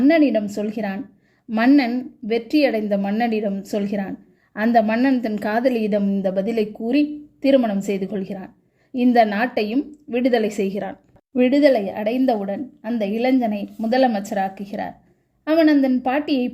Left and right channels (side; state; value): both; identical; correlation 1.00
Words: சொல்கிறான். மன்னன் வெற்றியடைந்த மன்னனிடம் சொல்கிறான். அந்த மன்னன் தன் காதலியிடம் இந்த பதிலை கூறி திருமணம் செய்து கொள்கிறான். இந்த நாட்டையும் விடுதலை செய்கிறான். விடுதலை அடைந்தவுடன் அந்த இளைஞனை முதலமைச்சராக்குகிறார். அவன் அந்த பாட்டியை